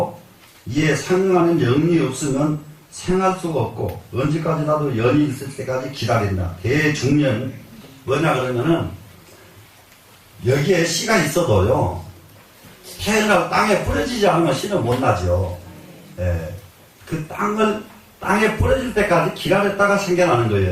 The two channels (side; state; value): both; identical; correlation 1.00